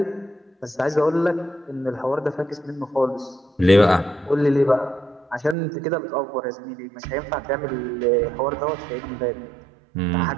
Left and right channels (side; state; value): left; drops out; at 5.6 s